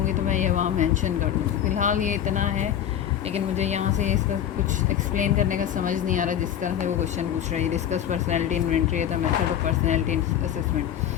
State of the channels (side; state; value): right; quieter; 10.2 dB